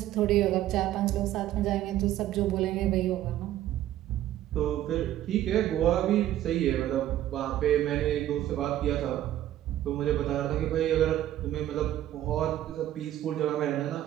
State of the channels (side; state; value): left; quieter; 12.9 dB